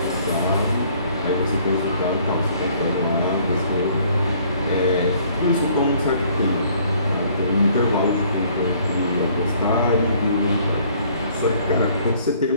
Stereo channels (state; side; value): inverted; both; correlation -0.60